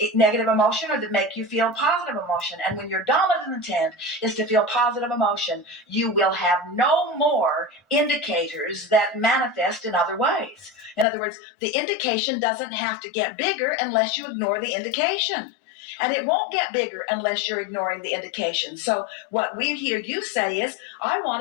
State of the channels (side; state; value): right; drops out; at 11.1 s